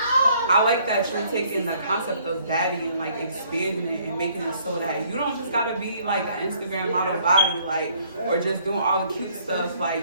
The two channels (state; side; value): inverted; both; correlation -0.63